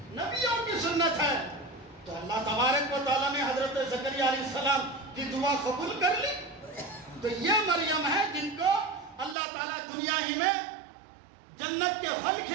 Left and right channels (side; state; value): left; drops out; at 9.3 s